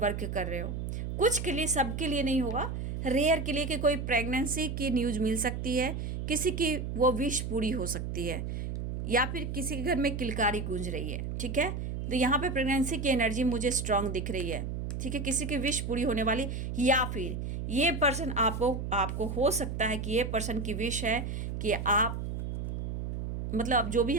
कर रहे हो। कुछ के लिए, सबके लिए नहीं होगा, रेयर के लिए कि कोई प्रेगनेंसी की न्यूज़ मिल सकती है, किसी की वो विश पूरी हो सकती है, या फिर किसी के घर में किलकारी गूंज रही है, ठीक है। तो यहाँ पे प्रेगनेंसी की एनर्जी मुझे स्ट्रांग दिख रही है, ठीक है, किसी की विश पूरी होने वाली, या फिर ये पर्सन आपको हो सकता है कि ये पर्सन की विश है कि आप, मतलब जो भी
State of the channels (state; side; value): noise; right; hum, 4 dB below the sound